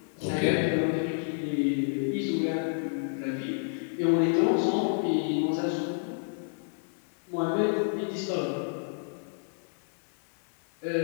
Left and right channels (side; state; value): right; silent; digital silence